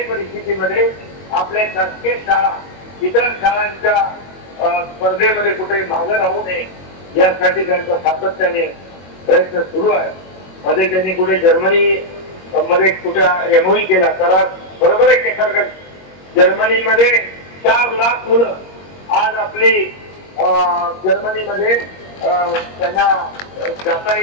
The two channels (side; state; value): right; late; 21 ms